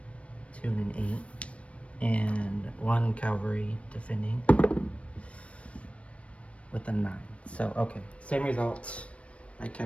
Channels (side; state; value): right; late; 0.062 ms